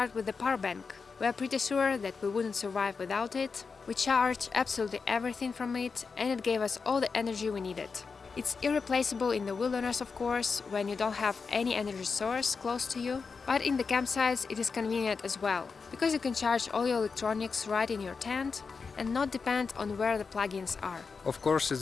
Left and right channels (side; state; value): right; quieter; 5.0 dB